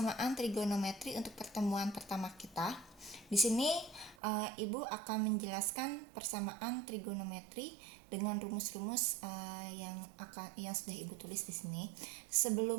trigonometri untuk pertemuan pertama kita. Di sini Ibu akan menjelaskan persamaan trigonometri dengan rumus-rumus yang sudah Ibu tulis di sini.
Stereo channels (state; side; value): drops out; left; at 4.2 s